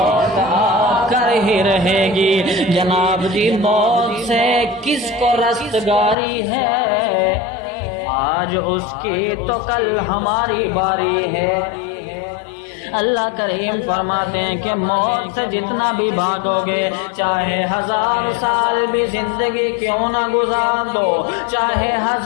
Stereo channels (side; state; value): right; drops out; at 6.2 s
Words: آ کر ہی رہے گی۔ جناب جی موت سے کس کو رستگاری ہے؟ آج اس کی تو کل ہماری باری ہے۔ اللہ کریم فرماتے ہیں کہ موت سے جتنا بھی بھاگو گے، چاہے 1000 سال بھی زندگی کیوں نہ گزار دو، چاہے